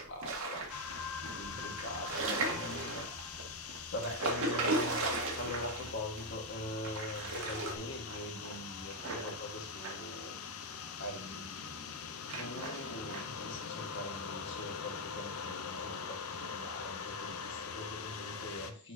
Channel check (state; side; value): normal; both; correlation 0.03